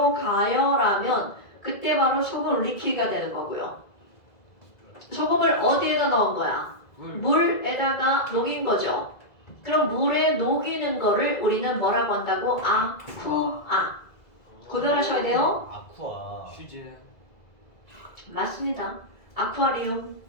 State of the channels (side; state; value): right; late; 2.0 ms